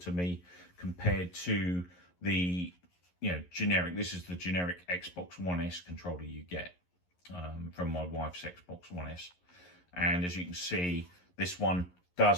me compared to the generic. This is the generic Xbox One S controller you get from my wife's Xbox One S, and as you can see, this one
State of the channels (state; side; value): late; right; 11 ms